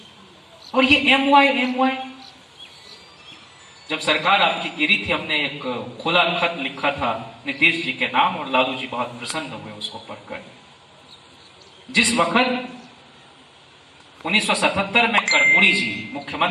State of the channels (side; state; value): both; identical; correlation 1.00